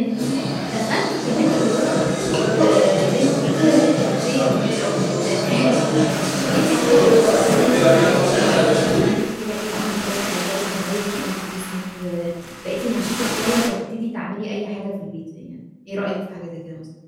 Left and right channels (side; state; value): both; identical; correlation 1.00